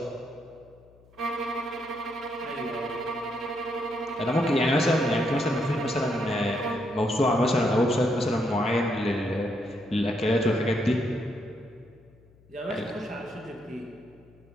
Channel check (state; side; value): noise; left; hum, 28 dB below the sound